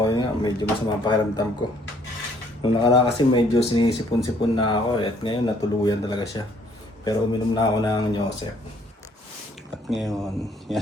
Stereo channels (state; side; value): normal; both; correlation 0.63